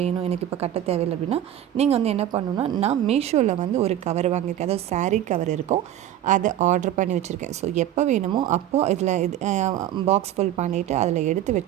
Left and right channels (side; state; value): left; quieter; 11.9 dB